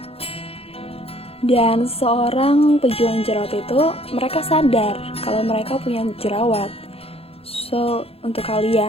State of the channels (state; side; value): late; right; 0.28 ms